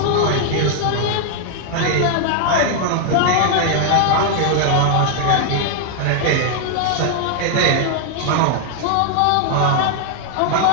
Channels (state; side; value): different; both; correlation 0.00